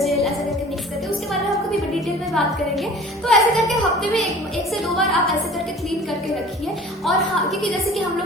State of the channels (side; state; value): both; normal; correlation 0.45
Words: ऐसा करके मिक्स करके, उसके बारे में आपको भी डिटेल में बात करेंगे। तो ऐसे करके हफ्ते में एक से दो बार आप ऐसे करके क्लीन करके रखिए। और हाँ, क्योंकि जैसे कि हम